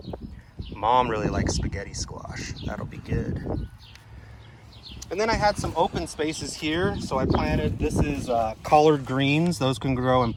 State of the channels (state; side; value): identical; both; correlation 1.00